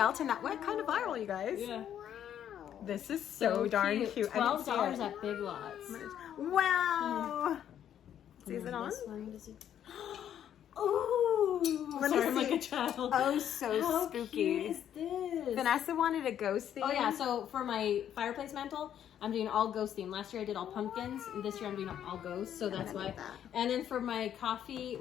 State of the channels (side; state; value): right; quieter; 10.0 dB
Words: that went kind of viral, you guys. Yeah. This is so darn cute. $12 at Big Lots. Wow. See, is it on? This one, does it... Ooh! Let me Sorry, I'm see. like a child. Oh, so How spooky. cute is this? Vanessa wanted a ghost theme. Oh yeah, so for my fireplace mantle, I'm doing all ghost theme. Last year I did all pumpkins, and this year I'm doing all ghosts, so that's why. And then for my coffee,